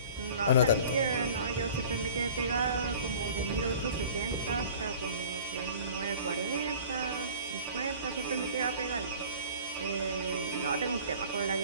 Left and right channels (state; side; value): inverted; both; correlation -0.44